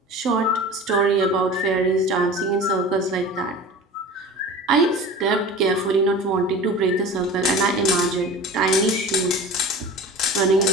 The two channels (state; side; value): normal; both; correlation 0.36